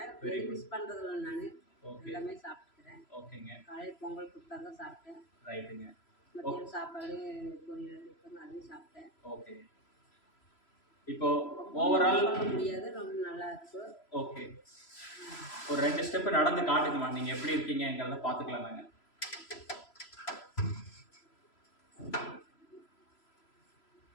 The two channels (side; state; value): right; late; 3.0 ms